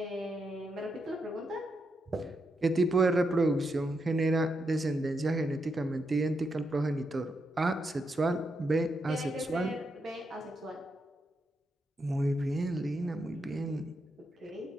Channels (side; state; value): both; normal; correlation 0.83